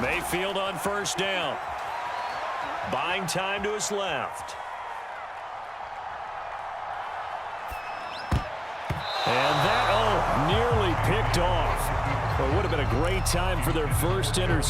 Mayfield on first down. Buying time to his left. And that, nearly picked off. Well, it would have been a great time for their first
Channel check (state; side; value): identical; both; correlation 1.00